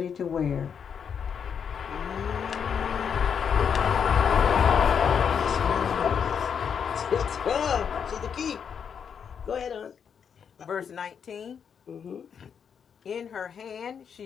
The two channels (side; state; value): right; quieter; 7.2 dB